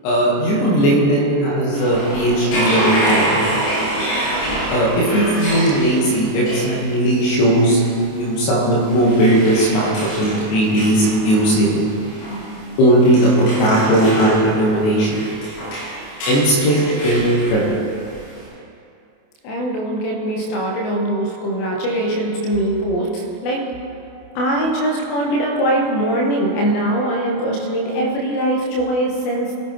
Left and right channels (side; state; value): right; late; 28 ms